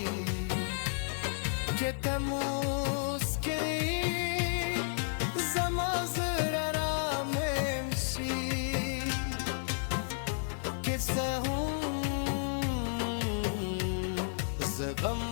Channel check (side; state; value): right; silent; digital silence